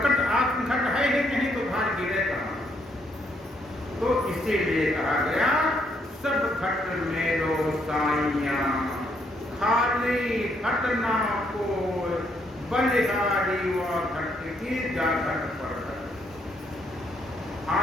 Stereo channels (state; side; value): normal; both; correlation 0.72